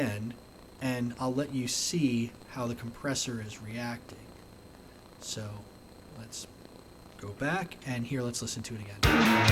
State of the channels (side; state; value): both; identical; correlation 1.00